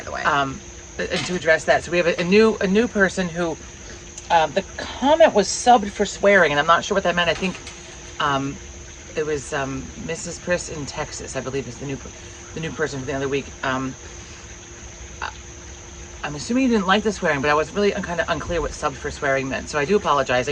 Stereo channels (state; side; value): identical; both; correlation 1.00